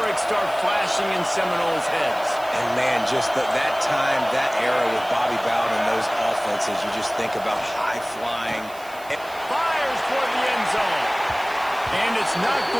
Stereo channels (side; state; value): right; noise; hiss, 21 dB below the sound